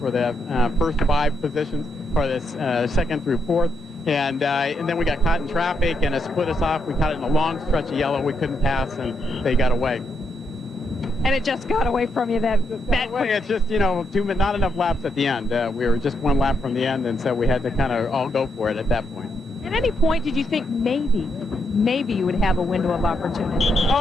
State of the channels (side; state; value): both; normal; correlation 0.80